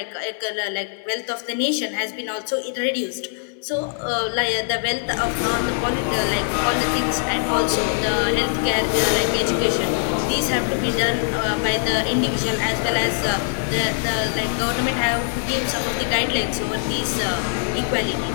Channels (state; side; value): silent; right; digital silence